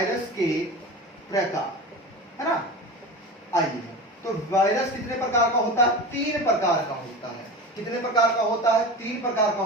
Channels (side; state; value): both; normal; correlation 0.29